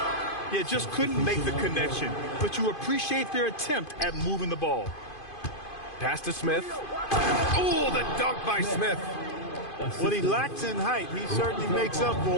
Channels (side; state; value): right; late; 2.5 ms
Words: Yeah, just couldn't make the connection. But you appreciate their attempt at moving the ball. Pass to Smith. Oh, the dunk by Smith. What he lacks in height, he certainly makes up